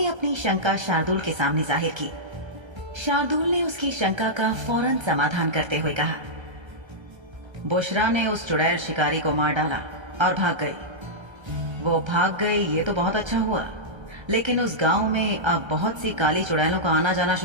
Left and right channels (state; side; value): late; left; 1.3 ms